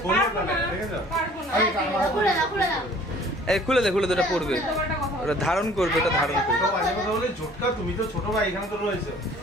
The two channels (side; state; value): both; normal; correlation 0.52